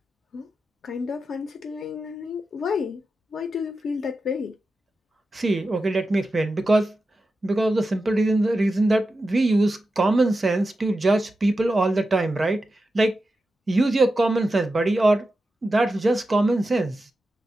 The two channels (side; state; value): both; normal; correlation 0.91